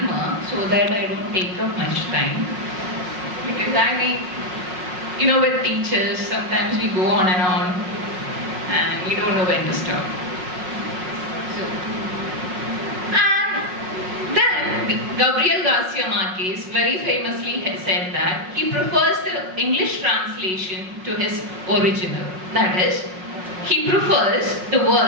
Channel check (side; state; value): left; late; 5.4 ms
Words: so that I don't take up much time. Because with teachers, sometimes we go on and we don't know when to stop. Gabriel Garcia Marquez very famously said that he prefers the English translation to his original. That is, he prefers the